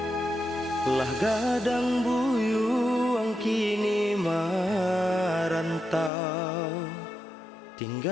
Lah gadang buyuang kini merantau,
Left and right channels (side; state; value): right; drops out; at 6.1 s